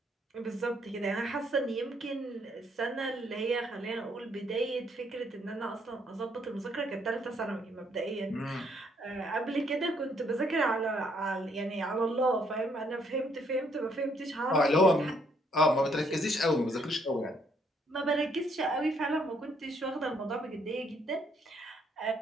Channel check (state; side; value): normal; both; correlation 0.69